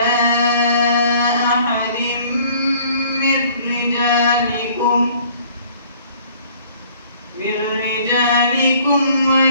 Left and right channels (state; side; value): inverted; both; correlation -0.56